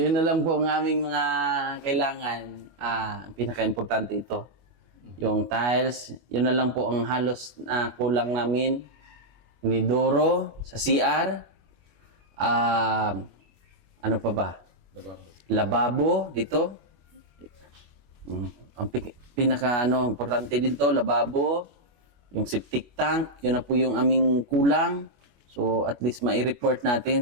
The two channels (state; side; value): late; left; 25 ms